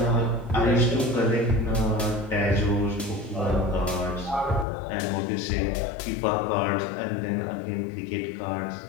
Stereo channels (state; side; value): drops out; right; at 4.7 s